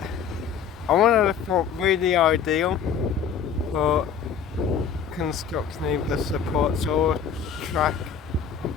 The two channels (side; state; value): right; quieter; 7.1 dB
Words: I want to look really ideal for construction, either supports or track